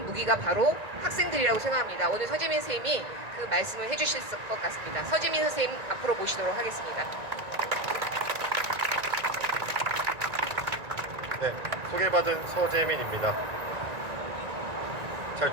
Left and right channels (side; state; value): left; late; 1.9 ms